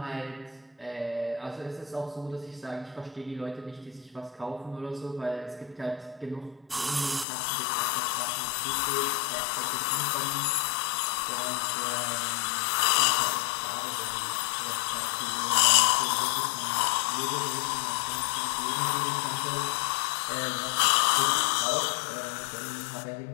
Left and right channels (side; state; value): right; drops out; at 7.2 s